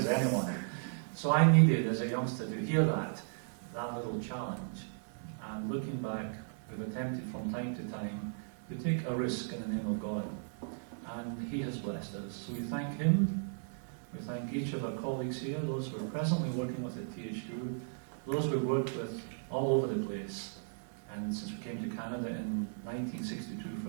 anyone. So I needed, as a youngster, to hear that little challenge. And looking back, we've attempted from time to time to take a risk in the name of God. And He has blessed us. So we thank Him. We thank each of our colleagues here, those who are presently working with at THU, those we've worked with all over the place. And since we came to Canada in 1962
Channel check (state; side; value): silent; left; 54 dB below the other